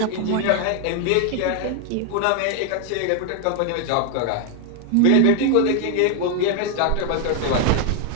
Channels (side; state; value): both; different; correlation 0.01